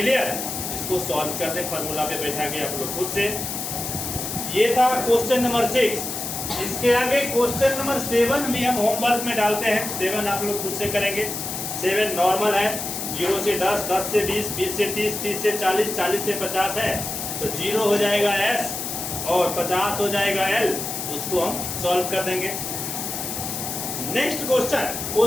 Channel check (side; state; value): left; noise; hiss, 5 dB below the sound